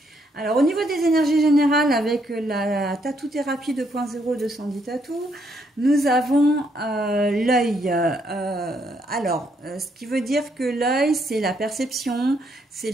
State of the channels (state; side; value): normal; both; correlation 0.73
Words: Alors au niveau des énergies générales, avec la Tattoo Thérapie 2.0 de Sandy Tattoo, nous avons l'œil. Ce qui veut dire que l'œil, c'est la perception, c'est